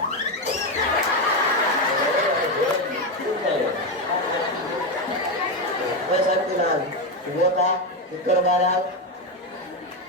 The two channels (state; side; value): normal; both; correlation 0.10